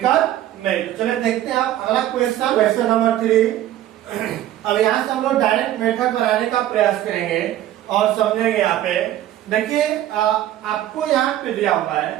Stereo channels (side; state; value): left; quieter; 12.9 dB